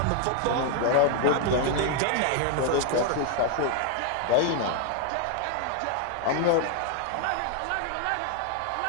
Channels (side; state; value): both; different; correlation 0.00